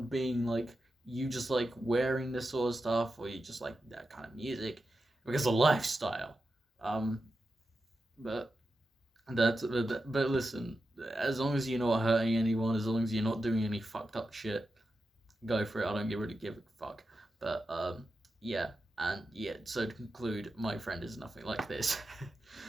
being like you just like wearing this sort of stuff, or you just like that kind of music, because of lifestyle. Um, but but listen, as long as you're not hurting anyone, as long as you're not doing any fucked up shit, go for it. I don't really give a fuck. But yeah. And yeah, so to conclude, my friend is nothing like this.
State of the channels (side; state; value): both; normal; correlation 0.90